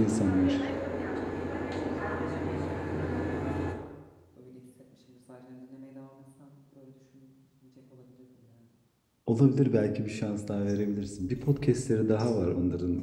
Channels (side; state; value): both; identical; correlation 1.00